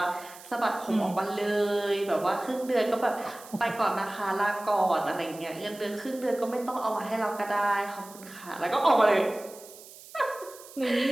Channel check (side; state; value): right; noise; hiss, 19 dB below the sound